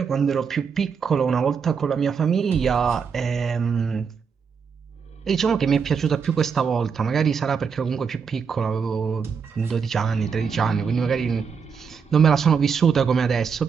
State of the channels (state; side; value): quieter; left; 6.2 dB